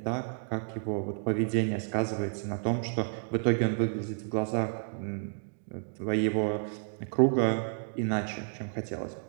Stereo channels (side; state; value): left; silent; digital silence